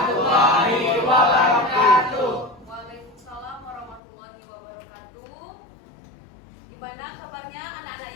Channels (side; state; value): right; drops out; at 4.0 s